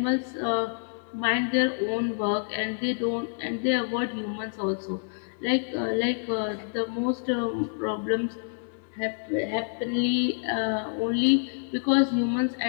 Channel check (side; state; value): right; silent; digital silence